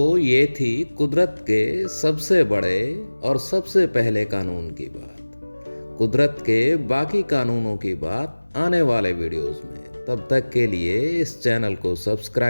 ये थी कुदरत के सबसे बड़े और सबसे पहले कानून की बात। कुदरत के बाकी कानूनों की बात आने वाले वीडियोस में। तब तक के लिए इस चैनल को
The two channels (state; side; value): inverted; both; correlation -1.00